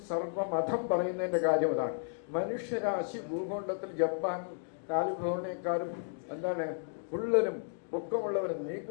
സർവമതം പറയുന്നതിൻ്റെ കാര്യം അതാണ്. മനുഷ്യരാശി ഭൂഖണ്ഡത്തിൽ ജപ്പാൻ കാലിഫോർണിയക്കാരും എന്താണ് ഉള്ളനും പൊക്കമുള്ളവരും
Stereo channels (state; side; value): silent; right; digital silence